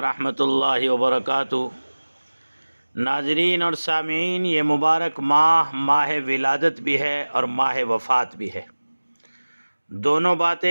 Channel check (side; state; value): both; inverted; correlation -1.00